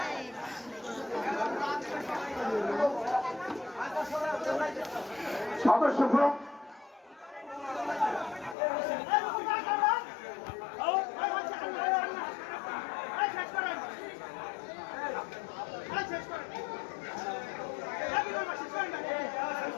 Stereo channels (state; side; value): drops out; right; at 8.6 s